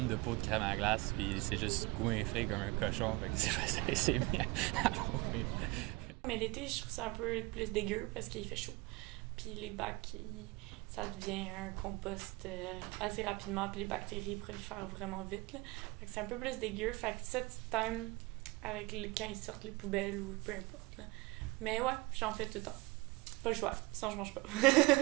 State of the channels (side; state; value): left; quieter; 23.3 dB